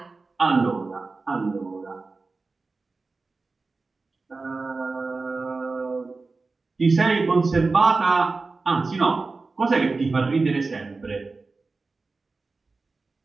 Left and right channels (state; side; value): quieter; left; 3.8 dB